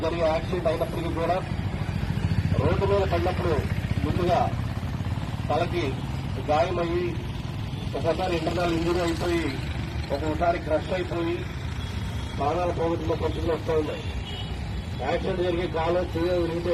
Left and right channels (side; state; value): both; identical; correlation 1.00